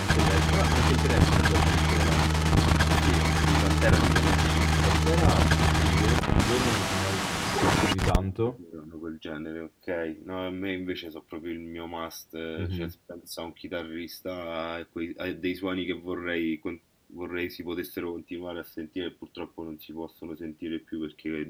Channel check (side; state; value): both; identical; correlation 1.00